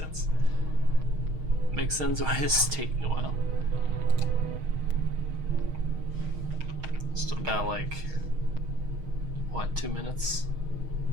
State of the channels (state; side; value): late; left; 6.4 ms